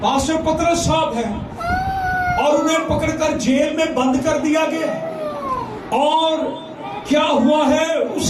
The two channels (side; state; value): both; identical; correlation 1.00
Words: پطرس صاحب ہیں، اور انہیں پکڑ کر جیل میں بند کر دیا گیا، اور کیا ہوا ہے اس